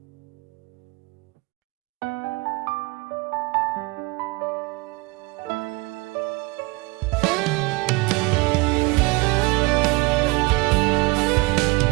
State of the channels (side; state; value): left; quieter; 24.6 dB